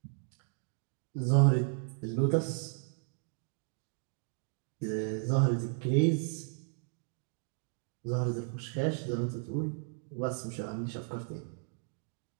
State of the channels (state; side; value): silent; left; 55 dB below the other